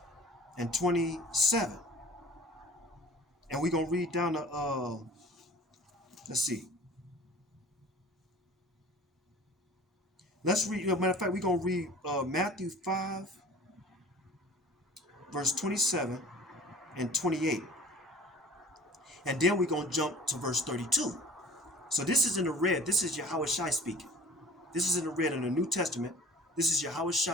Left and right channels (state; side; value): normal; both; correlation 0.45